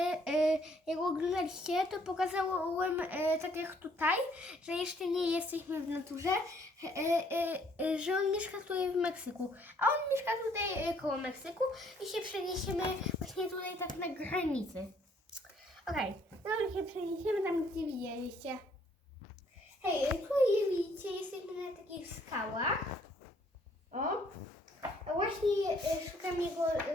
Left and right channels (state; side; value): normal; both; correlation 0.64